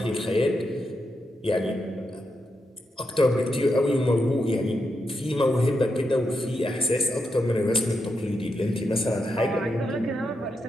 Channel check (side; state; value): both; normal; correlation 0.85